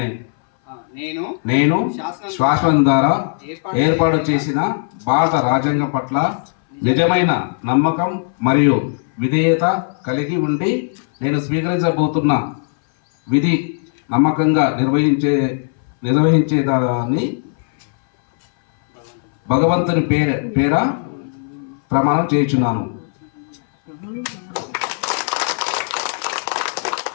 నేను శాసనం ద్వారా ఏర్పాటు చేసిన భారత రాజ్యాంగం పట్ల నిజమైన నమ్మకం మరియు విధేయత కలిగి ఉండి నేను స్వీకరించబోతున్న విధి నమ్మకంగా నిర్వహించేదాన్ని భగవంతుని పేర ప్రమాణం చేయించున్నాను.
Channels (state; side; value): silent; right; 61 dB below the other